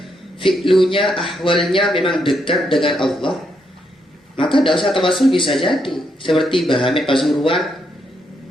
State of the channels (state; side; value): normal; both; correlation 0.78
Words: fi'lunya, ahwalnya memang dekat dengan Allah, maka tidak usah tawassul bisa jadi. Seperti Bahamid Pasuruan,